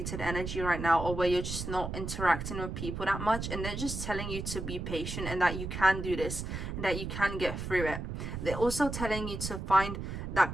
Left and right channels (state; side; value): noise; right; rumble, 5 dB below the sound